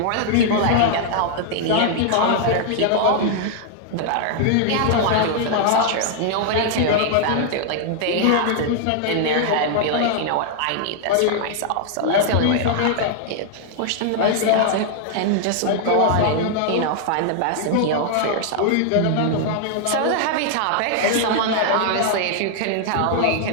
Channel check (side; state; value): both; different; correlation 0.00